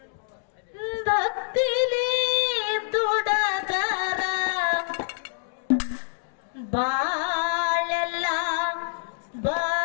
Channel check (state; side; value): silent; right; digital silence